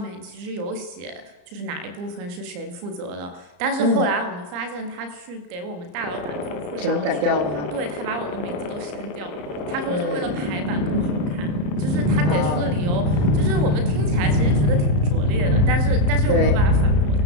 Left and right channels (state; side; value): late; left; 34 ms